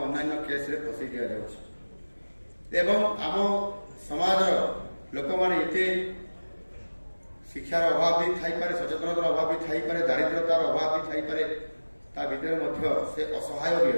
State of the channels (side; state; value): both; inverted; correlation -1.00